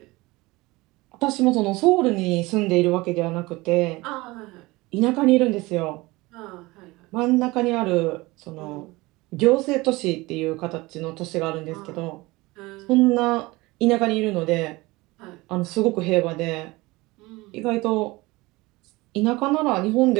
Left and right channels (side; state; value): left; quieter; 21.6 dB